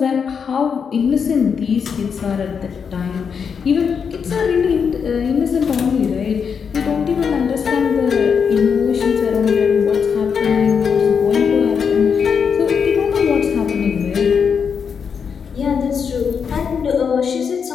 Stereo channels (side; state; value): right; quieter; 6.5 dB